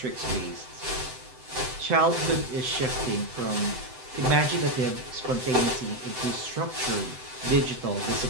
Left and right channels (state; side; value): late; left; 7.9 ms